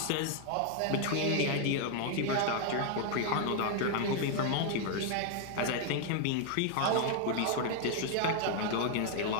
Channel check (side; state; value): both; different; correlation 0.00